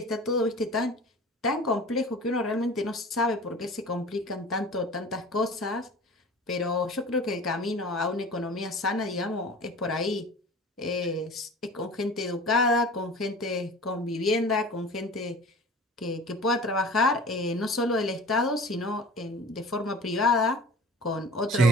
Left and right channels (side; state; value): both; normal; correlation 0.41